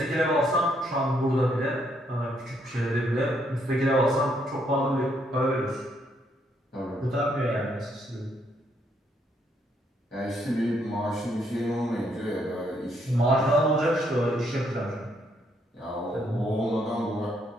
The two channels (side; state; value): both; normal; correlation 0.73